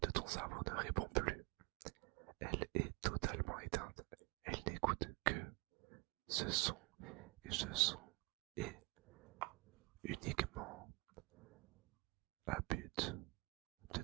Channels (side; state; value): left; quieter; 26.3 dB